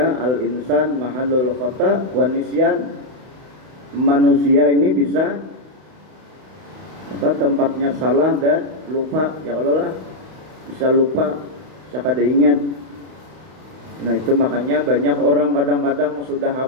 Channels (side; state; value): left; late; 32 ms